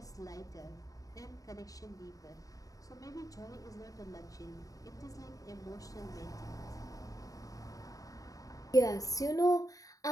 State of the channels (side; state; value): right; late; 0.17 ms